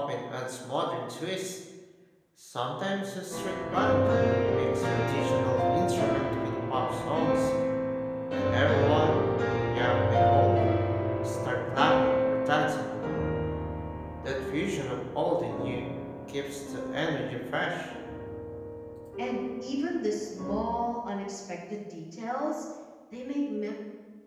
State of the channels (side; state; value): both; identical; correlation 1.00